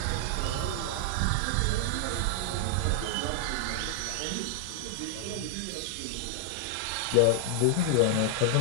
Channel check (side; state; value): both; different; correlation 0.00